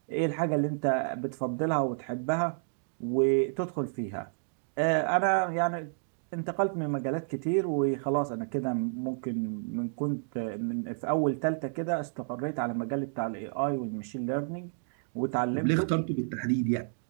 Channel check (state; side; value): silent; left; digital silence